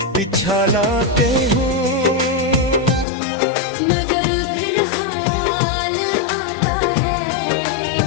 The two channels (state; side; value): drops out; right; at 3.1 s